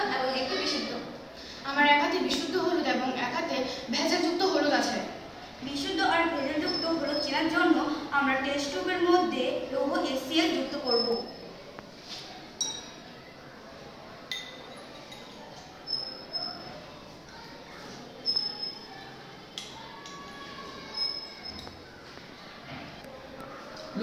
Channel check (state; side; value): identical; both; correlation 1.00